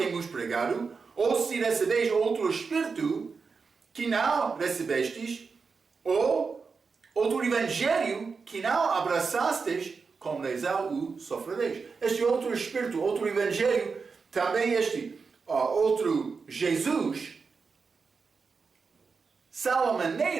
pregado, ou se recebeis outro Espírito, que não recebestes, ou outro Evangelho, que não abraçastes, com lesão o sofrereis. Este outro Espírito, outro Evangelho, também este outro Jesus, são a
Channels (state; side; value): quieter; left; 5.0 dB